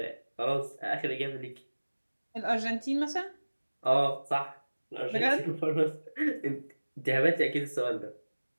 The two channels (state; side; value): inverted; both; correlation -1.00